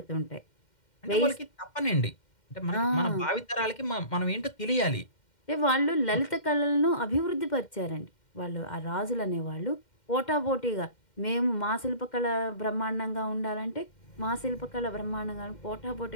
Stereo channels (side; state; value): right; late; 2.1 ms